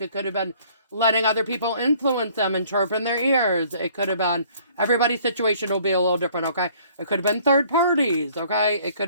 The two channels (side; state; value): both; inverted; correlation -0.58